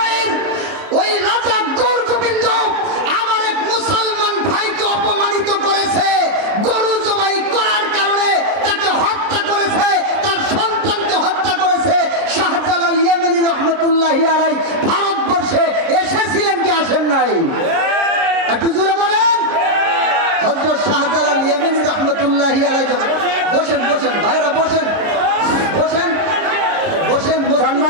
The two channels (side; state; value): left; late; 29 ms